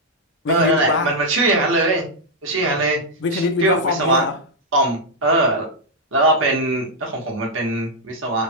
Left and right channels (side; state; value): both; normal; correlation -0.03